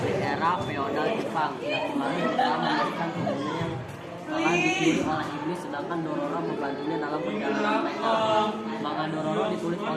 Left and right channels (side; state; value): both; identical; correlation 1.00